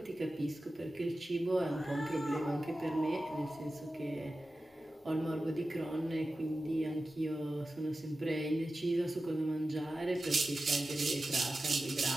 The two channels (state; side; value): normal; both; correlation 0.94